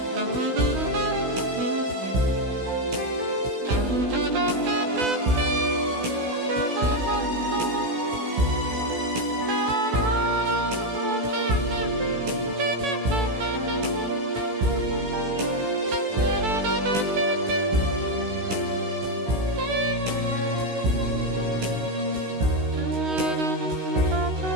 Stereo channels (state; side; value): late; left; 16 ms